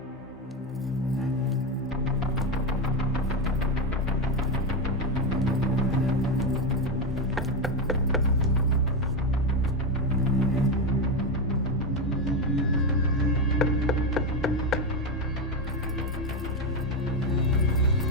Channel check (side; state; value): both; normal; correlation 0.11